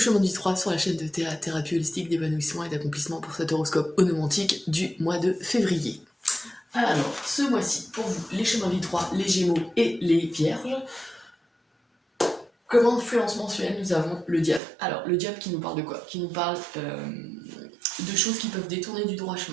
du 3 sur la chaîne de thérapie holistique d'épanouissement et d'accomplissement pour cet horoscope onomantique du mois de février. Alors, ce mois-ci, pour vous, les chemins du 3, les Gémeaux et les Vierges, comme influence mensuelle, nous avons le diable. Alors, le diable qui nous parle de quoi? Qui nous parle de choses qui peuvent détourner du droit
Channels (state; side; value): drops out; left; at 14.6 s